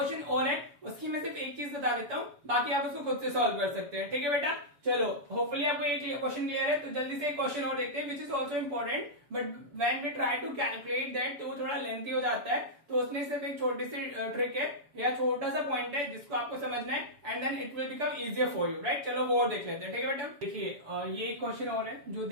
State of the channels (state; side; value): late; left; 7.0 ms